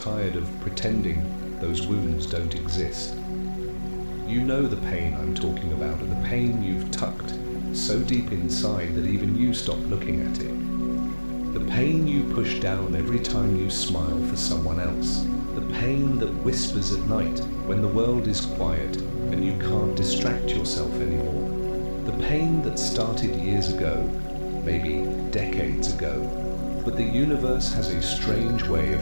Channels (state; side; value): inverted; both; correlation -1.00